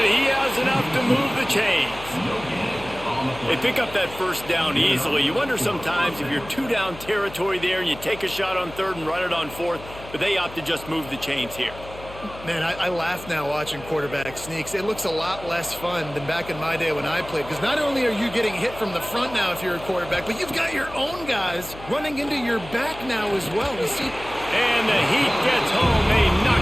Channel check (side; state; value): left; noise; hum, 16 dB below the sound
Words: he has enough to move the chains. They pick up that first down easily. You wonder sometimes if you're two-down territory there and you take a shot on third and run it on fourth, but they opt to just move the chains here. Man, I laugh now watching quarterback sneaks. It looks a lot less fun than back in my day when I played, because not only are you getting hit from the front now if you're a quarterback, but you've got your own guys running into your back now as well. You see? And the Heat gets home. They knock